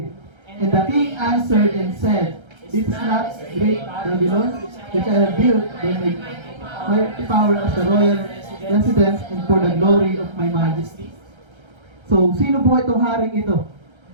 And the king answered and said, "It's not great Babylon, which I have built by my power as the royal residence and for the glory of my majesty." So, sino po itong haring ito?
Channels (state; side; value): late; left; 1.3 ms